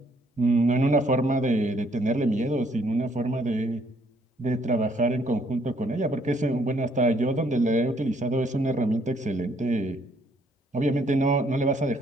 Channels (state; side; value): normal; both; correlation 0.67